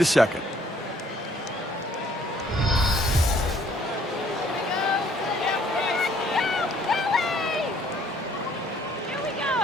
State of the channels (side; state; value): both; normal; correlation 0.62